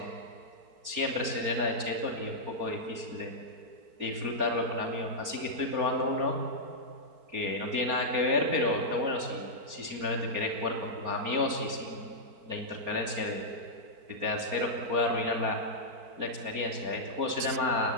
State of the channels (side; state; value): left; late; 4.3 ms